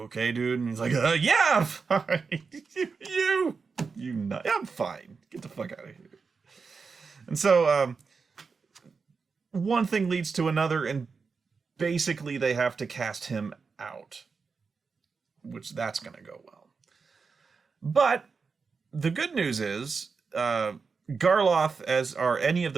okay, dude? And he's like, yeah, I'm fine. you nut. I'm fine. Get the fuck out of here. And so one thing leads to another, and basically they have to cast him out, which that's going to go well. But the good news is Garloth, as are any of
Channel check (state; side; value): quieter; left; 5.0 dB